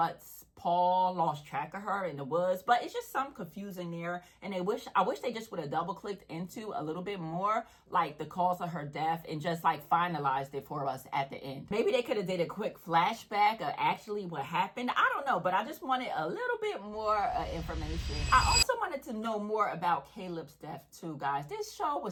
Paul lost track of her in the woods. But it's just some confusing there, and I wish they just would have double clicked into a little bit more like the cause of her death and just like finalized it for us at the end. Maybe they could have did a quick flashback of actually what happened. I don't know, but I just wanted a little bit more information. I also wanted to know more about Caleb's death too, guys. This show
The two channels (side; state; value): both; identical; correlation 1.00